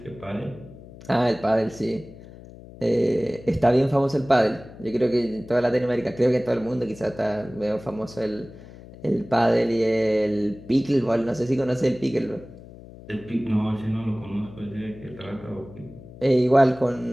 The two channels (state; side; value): noise; left; hum, 18 dB below the sound